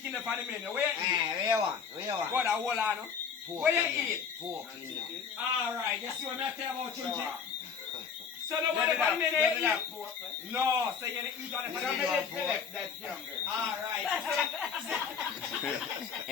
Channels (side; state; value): right; quieter; 6.5 dB